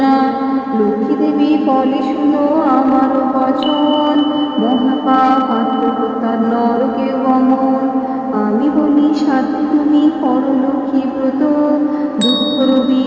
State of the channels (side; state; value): both; identical; correlation 1.00